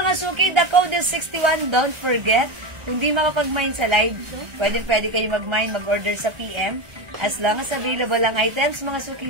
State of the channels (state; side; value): late; left; 1.3 ms